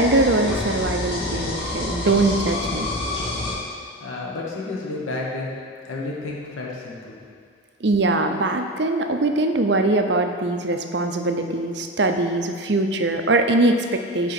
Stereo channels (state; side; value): normal; both; correlation 0.24